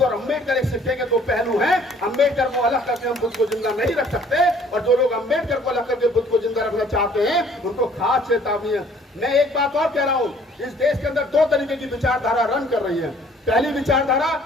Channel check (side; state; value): both; normal; correlation 0.57